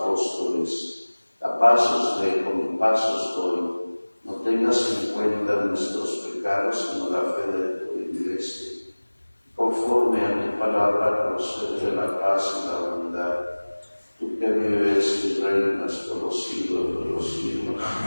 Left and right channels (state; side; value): inverted; both; correlation -1.00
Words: a paz os dejo, mi paz os doy. No tengas en cuenta nuestros pecados, sino la fe de tu Iglesia. Conforme a tu palabra, concede la paz y la unidad. Tú que vives y reinas por los siglos de los siglos.